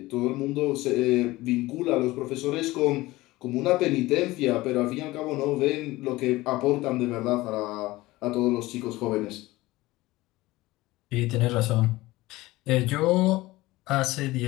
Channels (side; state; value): right; quieter; 19.1 dB